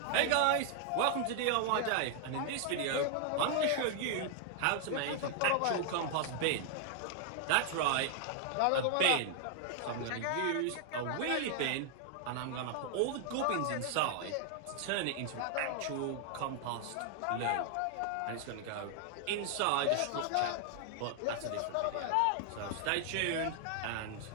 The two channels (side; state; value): both; different; correlation 0.00